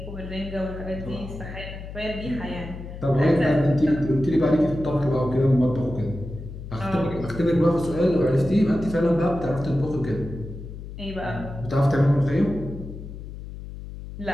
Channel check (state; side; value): noise; left; hum, 11 dB below the sound